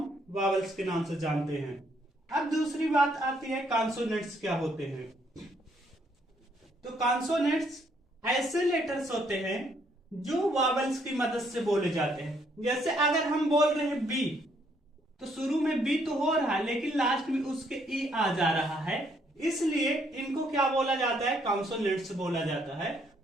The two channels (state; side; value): normal; both; correlation 0.69